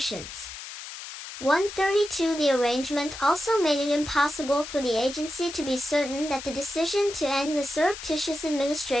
132. The arrangement also made it impossible for the agency to be certain that the decision to end the surreptitious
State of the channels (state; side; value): noise; left; hiss, 11 dB below the sound